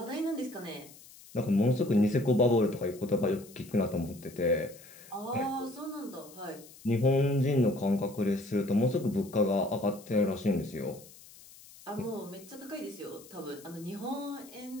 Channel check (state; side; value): noise; left; hiss, 21 dB below the sound